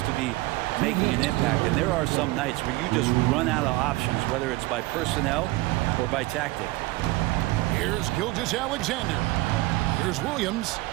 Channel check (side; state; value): left; quieter; 20.1 dB